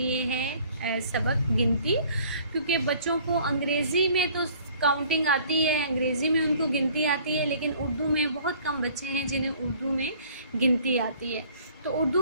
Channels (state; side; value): inverted; both; correlation -0.54